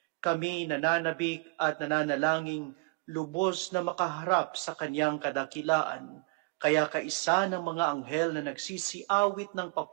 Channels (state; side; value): quieter; left; 28.8 dB